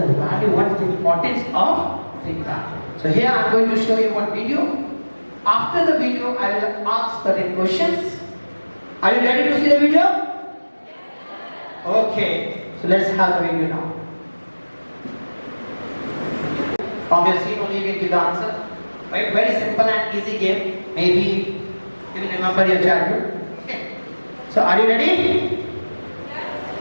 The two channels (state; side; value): inverted; both; correlation -1.00